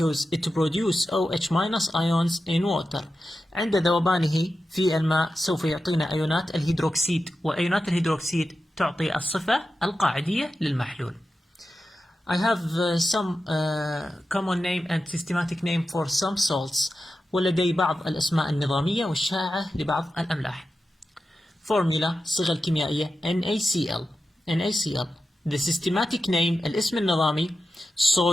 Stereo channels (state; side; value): normal; both; correlation 0.91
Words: it produces OH minus ions in water. عند ذوبانه في الماء سوف يعطينا أيونات الهيدروكسيد، وأيونات الهيدروكسيد تعطي الصفة القاعدية للمحلول. I have some common name and systematic name for some salts. ولدي بعض الأسماء النظامية والشائعة لبعض الأملاح. Formula الصيغة الكيميائية NaCl. The systematic name الاسم النظامي